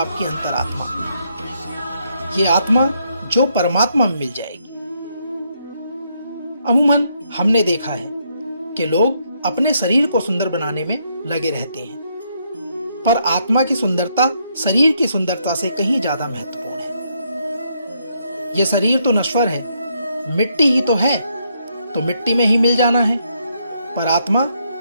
अंतरात्मा। ये आत्मा जो परमात्मा में मिल जाएगी। अमूमन हमने देखा है कि लोग अपने शरीर को सुंदर बनाने में लगे रहते हैं, पर आत्मा की सुंदरता शरीर की सुंदरता से कहीं ज्यादा महत्वपूर्ण है। यह शरीर तो नश्वर है, मिट्टी ही तो है, तो मिट्टी में ही मिल जाना है, पर आत्मा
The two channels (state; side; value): inverted; both; correlation -0.75